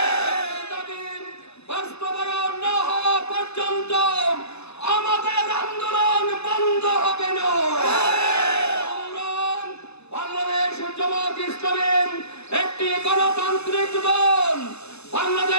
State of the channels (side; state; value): right; late; 0.80 ms